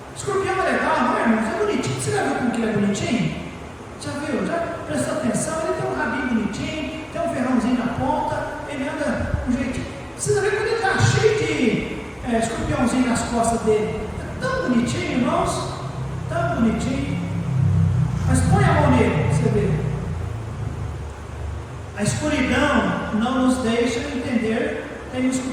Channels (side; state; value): both; identical; correlation 1.00